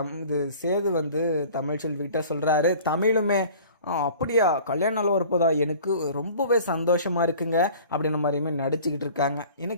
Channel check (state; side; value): inverted; both; correlation -0.46